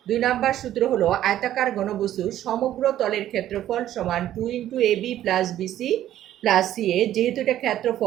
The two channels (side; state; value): left; quieter; 12.4 dB